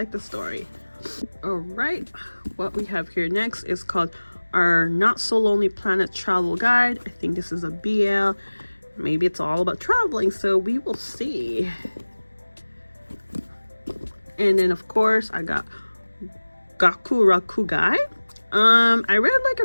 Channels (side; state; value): both; inverted; correlation -1.00